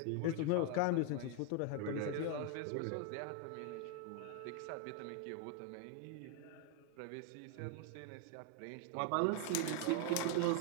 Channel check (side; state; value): both; different; correlation 0.01